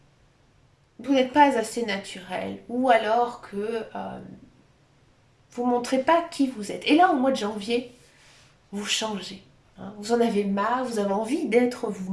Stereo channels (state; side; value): identical; both; correlation 1.00